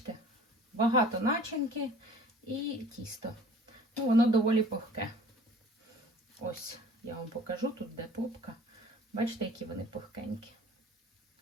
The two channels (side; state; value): both; normal; correlation 0.48